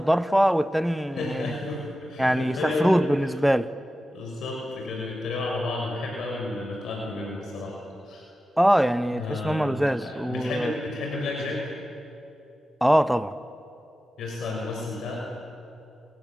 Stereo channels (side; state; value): both; normal; correlation 0.93